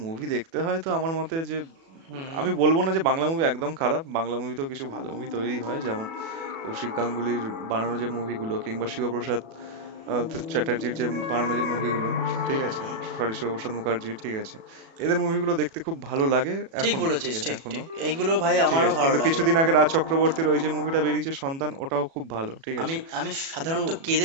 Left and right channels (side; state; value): left; late; 37 ms